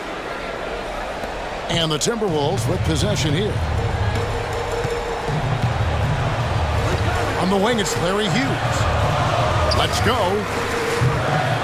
And the Timberwolves with possession here. On the wing, it's Larry Hughes. Let's go.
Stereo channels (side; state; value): both; identical; correlation 1.00